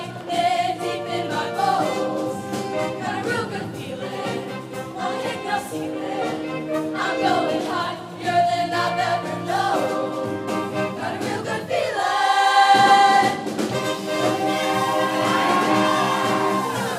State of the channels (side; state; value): both; identical; correlation 1.00